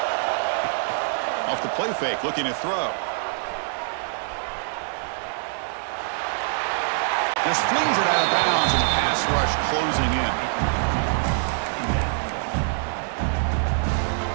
Off the play fake, looking to throw. Just flings it out of bounds, and pass rush closing in.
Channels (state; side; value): silent; left; digital silence